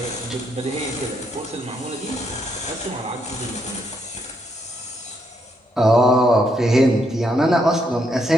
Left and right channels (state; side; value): normal; both; correlation 0.76